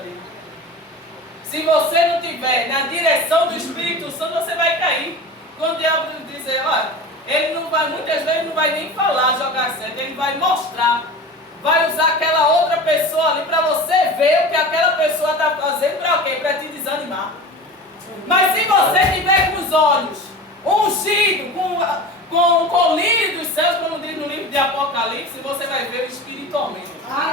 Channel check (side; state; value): both; normal; correlation 0.33